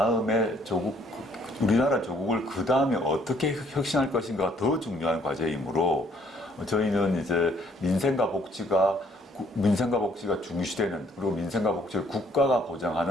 우리나라 조국을 그 다음에 어떻게 혁신할 것인가가 더 중요한 과제이므로 저희는 이제 민생과 복지가 중시되는, 그리고 민생과 복지를 국가가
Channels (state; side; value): normal; both; correlation 0.64